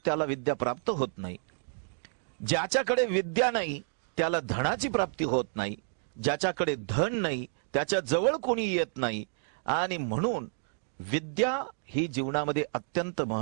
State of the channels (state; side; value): silent; left; digital silence